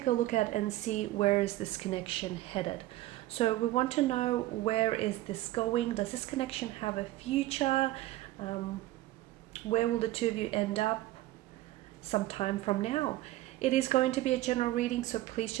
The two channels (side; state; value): left; quieter; 16.4 dB